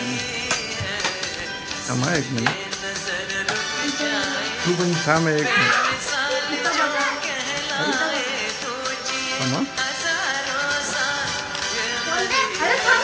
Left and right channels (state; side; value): identical; both; correlation 1.00